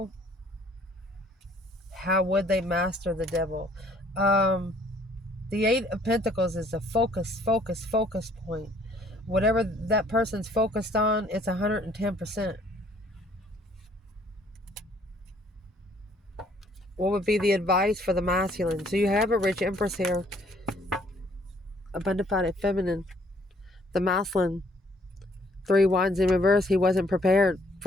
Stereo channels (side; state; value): both; normal; correlation 0.62